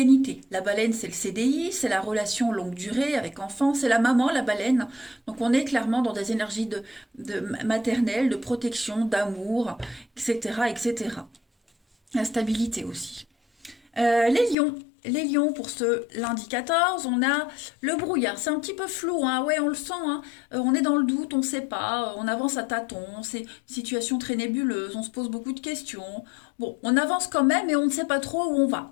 La baleine, c'est le CDI, c'est la relation longue durée avec enfant, c'est la maman, la baleine. Donc, on est clairement dans des énergies de maternelle, de protection, d'amour, etc., etc. La stabilité aussi. Les lions. Les lions, pour ce lundi 14, on a le brouillard. C'est un petit peu flou, hein. Ouais, on le sent, hein. On est dans le doute, on ne sait pas, on avance à tâtons, c'est une situation très nébuleuse, on se pose beaucoup de questions. Bon, on avance quand même et on ne sait pas trop où on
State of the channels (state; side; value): drops out; right; at 14.6 s